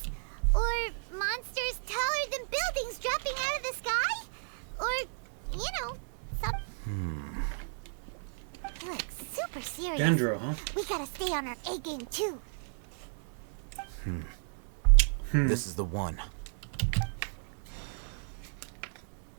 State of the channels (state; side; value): silent; left; 55 dB below the other